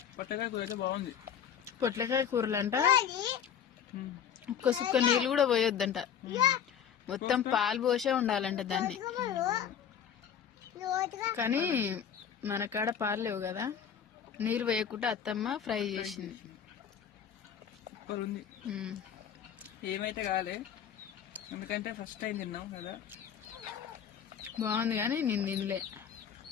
పొట్లకాయ కూర అయితే బాగుంది. పొట్లకాయ కూరలంట ఒక్క సుక్క నీళ్ళు కూడా పోయొద్దంట, మొత్తం పాలు పోసే ఉండాలంట దాన్ని. కానీ మన కాడ పాలు లేవు కదా, నీళ్ళు వేయకుండా అత్తమ్మ ఫ్రై చేసింది. సూపర్ ఉంది. ఏమైతే కాలే, ఎందుకంటే ఫస్ట్ టైం తిన్నాం కదా. బాగుంది కానీ నేను తినలే,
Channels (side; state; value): right; quieter; 8.4 dB